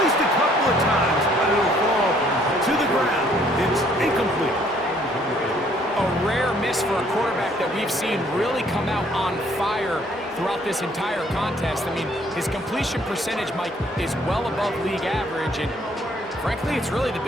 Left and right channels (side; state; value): both; normal; correlation 0.63